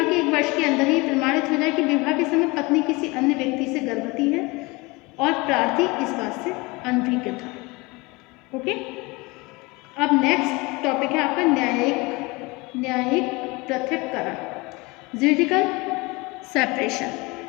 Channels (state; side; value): quieter; right; 24.8 dB